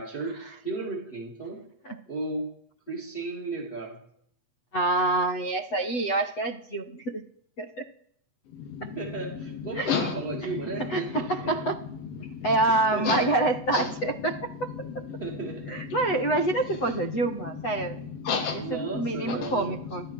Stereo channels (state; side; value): late; right; 8.1 ms